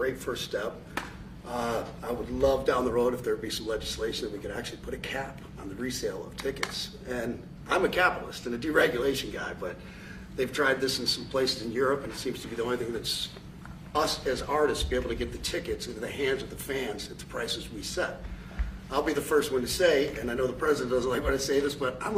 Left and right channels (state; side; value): identical; both; correlation 1.00